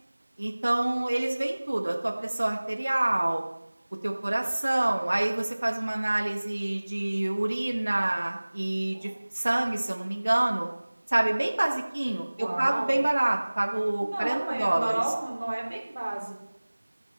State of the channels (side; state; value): both; inverted; correlation -1.00